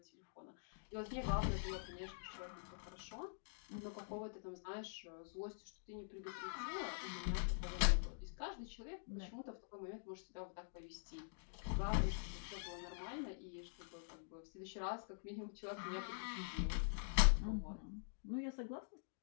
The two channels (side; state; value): right; silent; digital silence